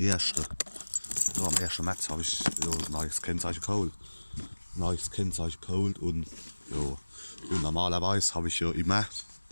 März habe ich ein neues Kennzeichen geholt. Und ja, und normalerweise habe ich ja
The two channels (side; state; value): both; inverted; correlation -1.00